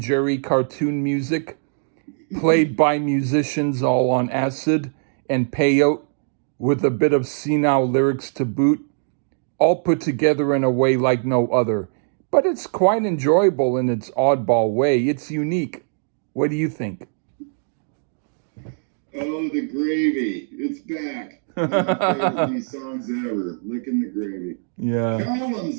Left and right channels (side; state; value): left; silent; digital silence